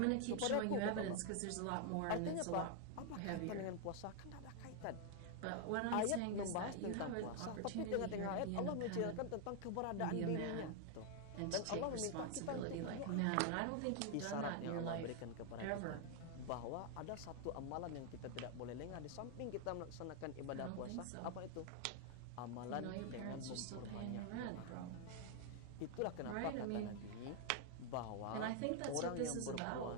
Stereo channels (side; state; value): both; different; correlation 0.00